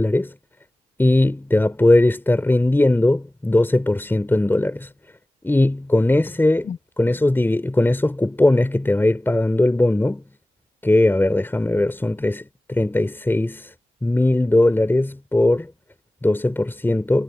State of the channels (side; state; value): both; normal; correlation 0.97